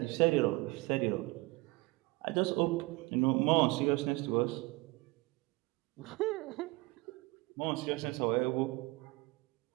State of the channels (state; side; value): quieter; left; 23.2 dB